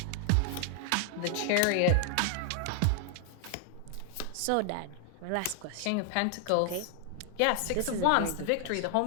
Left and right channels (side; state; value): both; different; correlation 0.00